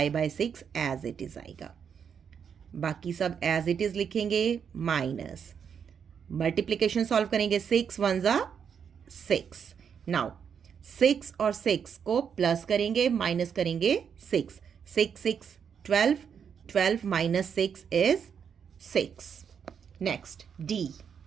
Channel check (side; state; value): left; quieter; 7.3 dB